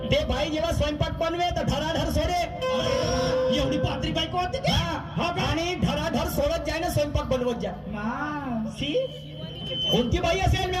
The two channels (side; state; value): both; identical; correlation 1.00